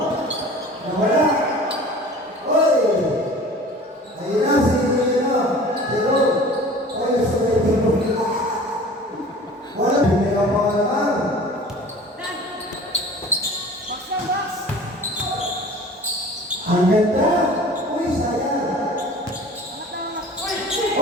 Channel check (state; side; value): normal; both; correlation 0.43